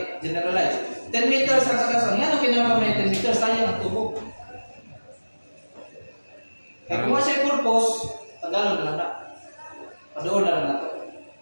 10 meters ang sakasan. Yan ang kinama may 10 meters. Sayang ang tubo. Kaya kung siya purpose, tagalon na lang na. Padoon na lang na ito.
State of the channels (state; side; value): inverted; both; correlation -1.00